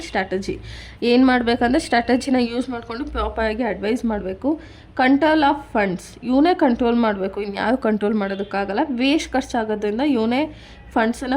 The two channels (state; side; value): identical; both; correlation 1.00